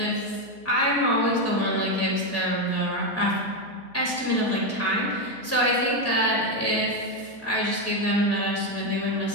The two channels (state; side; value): noise; right; hum, 30 dB below the sound